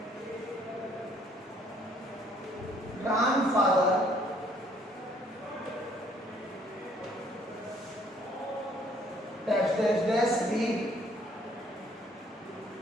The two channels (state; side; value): normal; both; correlation 0.63